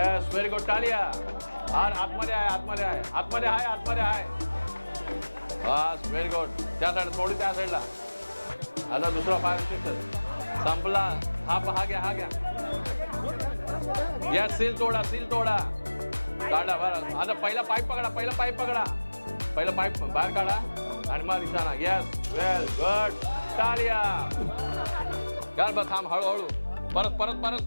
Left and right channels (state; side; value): inverted; both; correlation -1.00